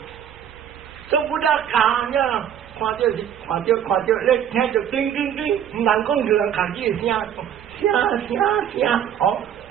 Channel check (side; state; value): left; quieter; 9.4 dB